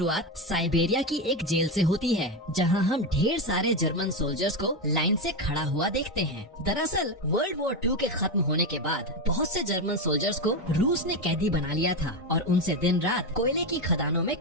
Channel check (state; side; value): normal; both; correlation 0.13